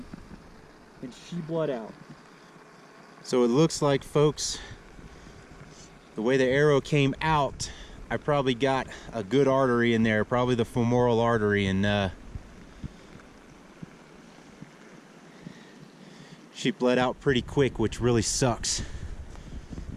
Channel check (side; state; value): both; identical; correlation 1.00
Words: and she bled out. So it looks like, folks, the way the arrow came out, I probably got a good artery in there, probably the femoral artery, and she bled out pretty quick, which really sucks